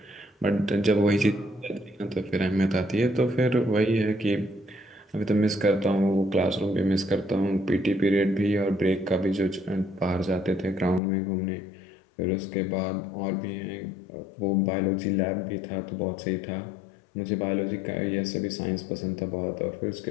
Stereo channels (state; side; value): drops out; right; at 11.0 s